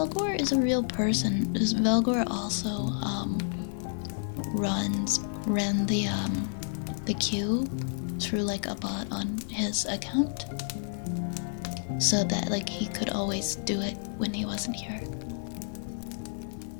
is a real person. Velgor also ran the queue through like a bot on his account, so that like he could always do it when he wasn't here.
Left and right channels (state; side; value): silent; right; digital silence